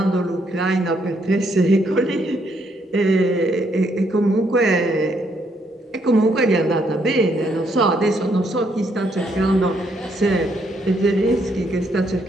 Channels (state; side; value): normal; both; correlation 0.73